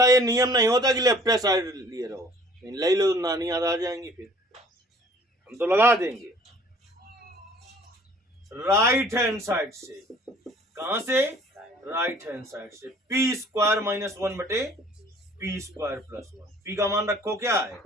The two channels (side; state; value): both; normal; correlation 0.53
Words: ये नियम नहीं होता कि लेफ्ट साइड लिए रहो, ले लो नानी याद आ जाएंगी, फिर हम तो लगा देंगे राइट हैंड साइड से। कहां से, राइट हैंड साइड से। P² - 1 बटे P² + 1। P का मान रखो क्या है